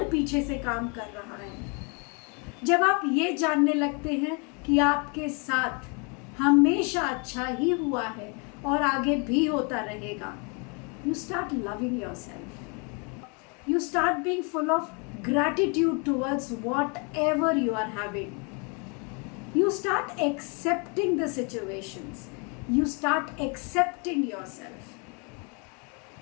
पीछे से काम कर रहा है, जब आप ये जानने लगते हैं कि आपके साथ हमेशा अच्छा ही हुआ है और आगे भी होता रहेगा, you start loving yourself. You start being full of gratitude towards whatever you are having. You start accepting the situations. You start accepting yourself.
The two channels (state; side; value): quieter; right; 34.1 dB